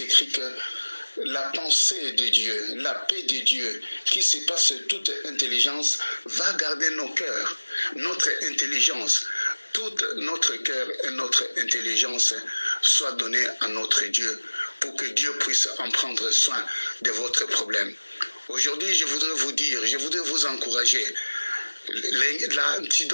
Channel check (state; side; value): inverted; both; correlation -1.00